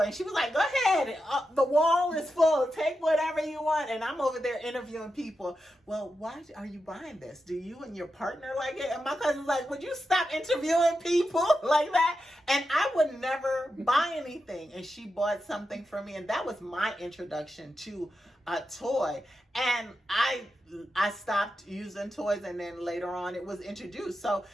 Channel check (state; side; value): normal; both; correlation 0.88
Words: And she was like, "Go ahead, the wall is full. Take whatever you want." And I'm over there interviewing people. "Well, why are you buying this? Do you and your partner like it?" And my cousin's like, "Would you stop interviewing people like that?" And I would never buy anything. And she bought something for me, and that was my introduction to a toy. And I stopped using toys, and then later on it was introduced. So